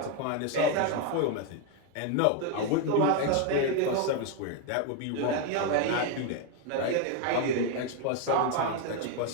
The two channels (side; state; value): both; different; correlation 0.01